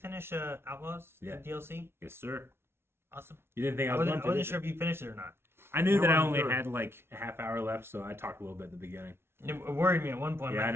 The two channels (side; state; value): left; late; 0.12 ms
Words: Outlaws? Yeah. The DLC? Yes, sir. Awesome. You didn't think I I was wasn't, going to? sure if you finished it or not. I knew I that I wasn't only sure. had like a half hour left, so I talked a little bit at the beginning. It worried me at one point. Yeah, I like,